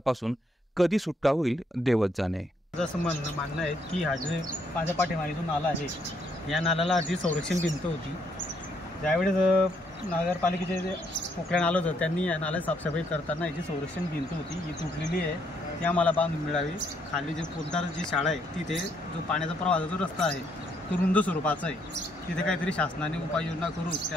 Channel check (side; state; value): both; normal; correlation 0.72